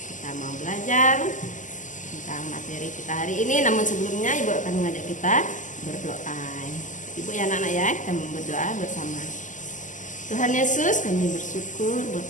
Kita mau belajar tentang materi kita hari ini. Namun sebelumnya Ibu akan mengajak kita berdoa. Ibu ya anak-anak ya, kita mau berdoa bersama. Tuhan Yesus, kami bersyukur buat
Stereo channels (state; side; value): late; right; 0.37 ms